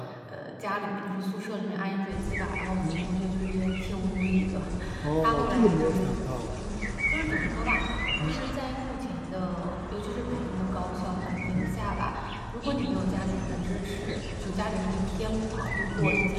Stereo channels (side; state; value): both; identical; correlation 1.00